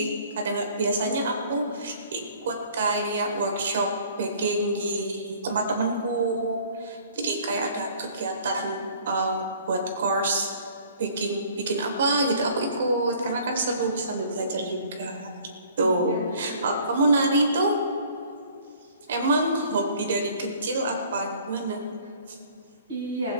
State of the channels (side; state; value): both; inverted; correlation -0.54